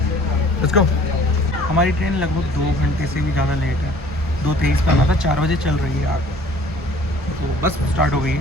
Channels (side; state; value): both; normal; correlation 0.53